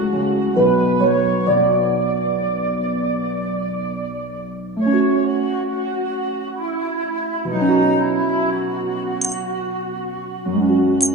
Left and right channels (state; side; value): normal; both; correlation 0.38